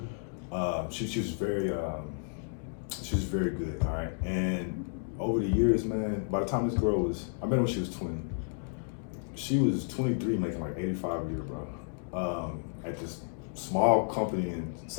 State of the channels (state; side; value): silent; right; digital silence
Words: She was very good, all right? And over the years, man, by the time this girl I met her when she was 20. She was 23, making like 85 a year, bro. At this small company in